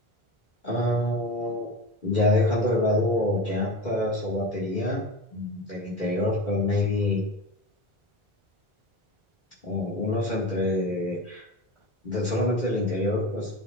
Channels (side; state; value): both; normal; correlation 0.28